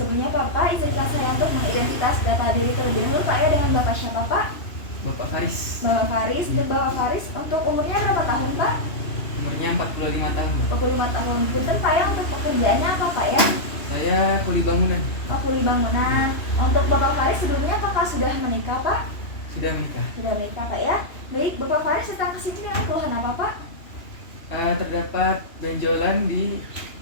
Bapak izinkan saya untuk mengidentitas data diri terlebih dahulu Pak ya, dengan Bapak siapa Pak? Bapak Faris. Bapak Faris, Bapak Faris untuk umurnya berapa tahun Pak? Umurnya 45 tahun. 45 tahun. Punten Pak ya, untuk pekerjaannya apa Pak ya? Saya kuli bangunan. Oh, kuli bangunan. Untuk Bapak Faris sebelumnya apakah sudah menikah Pak? Sudah menikah. Sudah menikah Pak ya. Baik, Bapak Faris datang ke sini dengan keluhan apa Pak? Terdapat benjolan di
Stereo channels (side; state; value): right; late; 2.8 ms